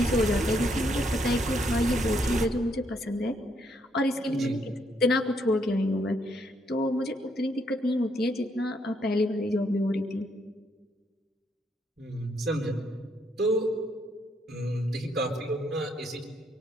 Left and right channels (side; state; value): both; normal; correlation 0.73